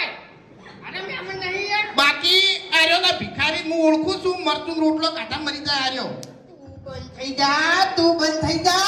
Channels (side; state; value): both; identical; correlation 1.00